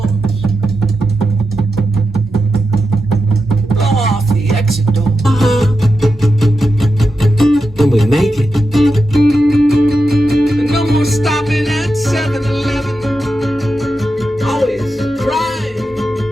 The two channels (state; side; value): normal; both; correlation 0.89